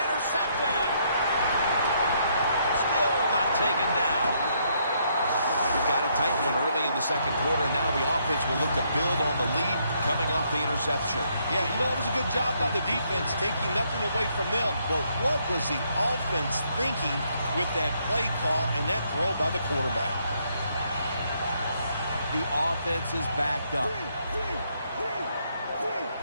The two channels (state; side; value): inverted; both; correlation -0.73